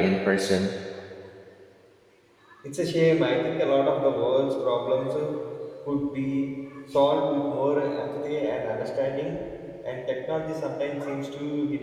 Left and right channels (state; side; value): identical; both; correlation 1.00